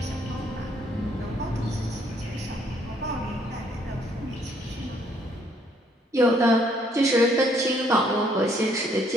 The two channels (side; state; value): both; normal; correlation 0.67